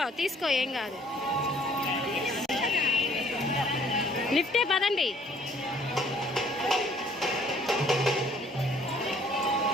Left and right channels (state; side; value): normal; both; correlation 0.59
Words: తీసుకో ఏం కాదు. లిఫ్టే పదండి.